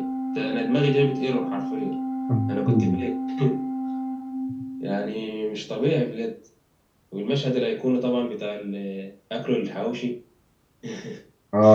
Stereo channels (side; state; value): both; identical; correlation 1.00